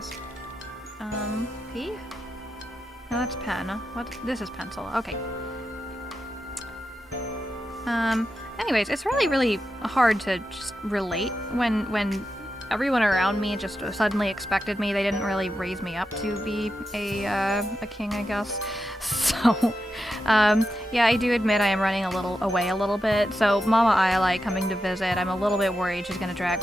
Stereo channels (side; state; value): both; normal; correlation 0.88